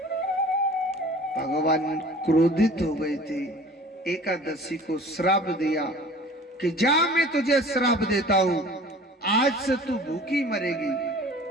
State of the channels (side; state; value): both; normal; correlation 0.45